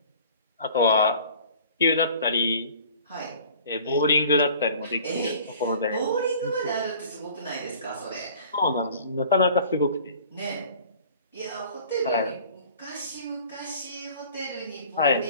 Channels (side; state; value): both; inverted; correlation -0.48